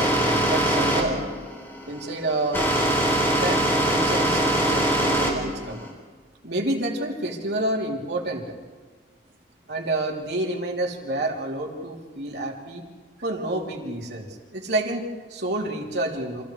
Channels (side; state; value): both; normal; correlation 0.31